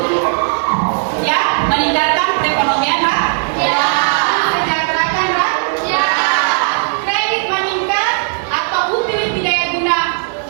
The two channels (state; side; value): silent; left; digital silence